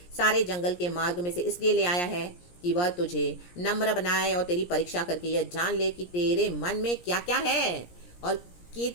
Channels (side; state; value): right; late; 17 ms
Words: सारे जंगल के मार्ग में से इसलिए ले आया है कि वह तुझे नम्र बनाए और तेरी परीक्षा करके यह जान ले कि तेरे मन में क्या क्या है और कि